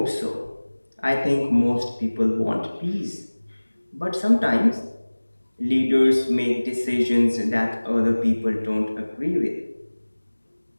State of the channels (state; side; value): inverted; both; correlation -1.00